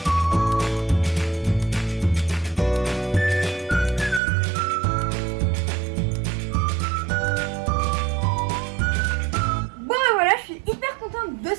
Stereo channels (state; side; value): drops out; left; at 4.2 s